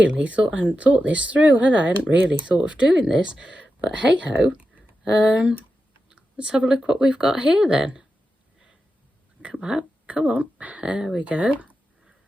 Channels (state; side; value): normal; both; correlation 0.90